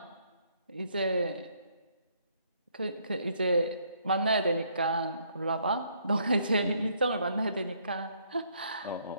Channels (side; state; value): both; inverted; correlation -0.68